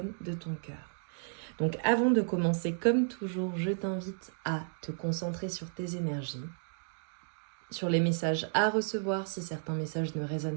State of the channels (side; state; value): left; silent; digital silence